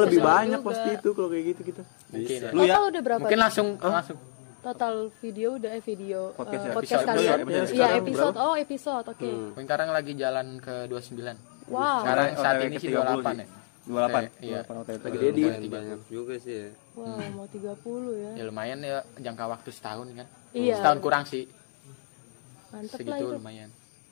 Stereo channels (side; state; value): right; silent; 59 dB below the other